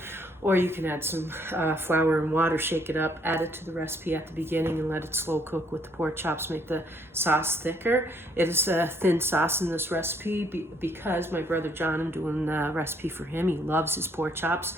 Or you can add some flour and water, shake it up, add it to the recipe at the beginning and let it slow cook with the pork chops, make the sauce thicker. It is a thin sauce in this recipe because my brother John, I'm doing the recipe for him. He loves his pork chops.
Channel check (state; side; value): normal; both; correlation 0.66